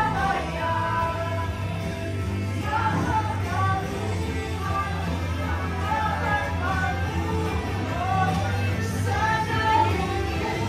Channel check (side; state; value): both; identical; correlation 1.00